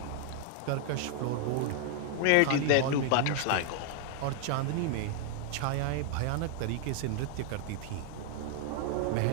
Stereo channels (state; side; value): different; both; correlation 0.00